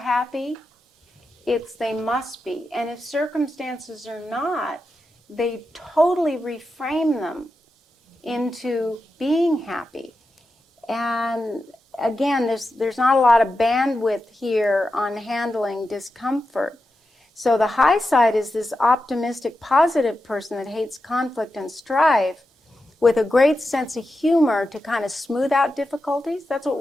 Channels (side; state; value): both; normal; correlation 0.89